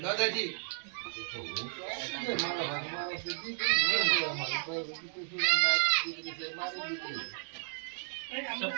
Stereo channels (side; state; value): left; silent; 56 dB below the other